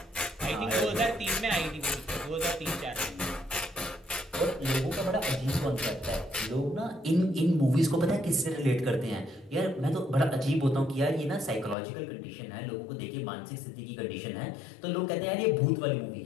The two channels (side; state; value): right; drops out; at 11.8 s